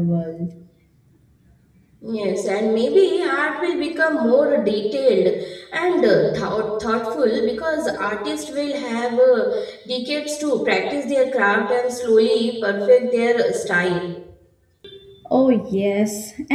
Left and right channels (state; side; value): identical; both; correlation 1.00